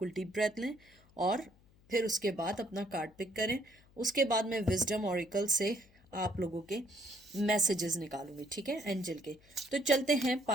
डीप ब्रेथ लें और फिर उसके बाद अपना कार्ड पिक करें। उसके बाद मैं विजडम ऑरिकल से आप लोगों के मैसेजेस निकालूंगी, ठीक है, एंजल के। तो चलते हैं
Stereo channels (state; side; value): noise; left; hum, 28 dB below the sound